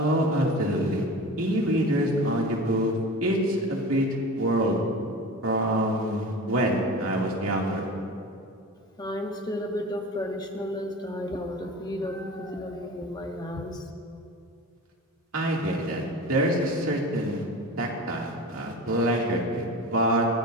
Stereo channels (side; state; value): both; normal; correlation 0.34